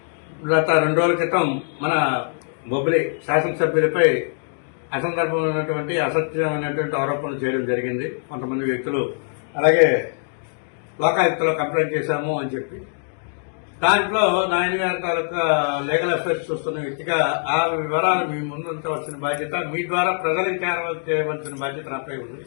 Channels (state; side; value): silent; right; 62 dB below the other